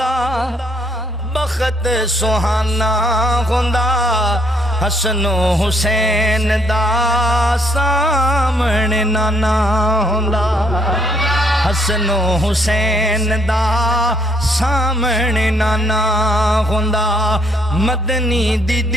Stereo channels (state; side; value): normal; both; correlation 0.68